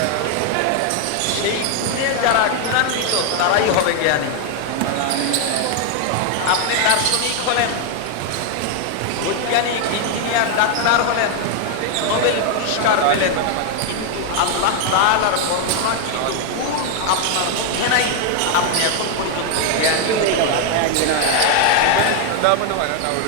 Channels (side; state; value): both; different; correlation 0.00